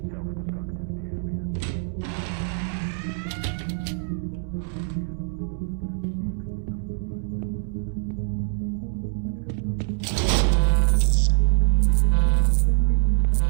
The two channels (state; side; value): silent; left; 62 dB below the other